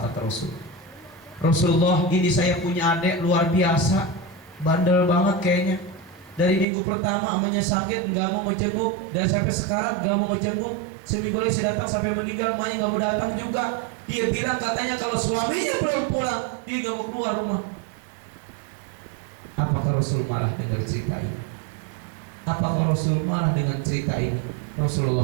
kata Rasul. "Rasulullah, ini saya punya adik luar biasa, bandel banget kayaknya. Dari minggu pertama amanya sakit, nggak mau ngejenguk, dan sampai sekarang nggak mau ngejenguk. Seminggu lagi saya datang sampai meninggal, emaknya nggak mau datang juga. Dia bilang katanya kalau suaminya belum pulang, dia nggak mau keluar rumah." Apakah Rasul marah dengar cerita ini? Apakah Rasul marah dengan cerita ini? Rasulullah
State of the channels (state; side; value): drops out; left; at 6.7 s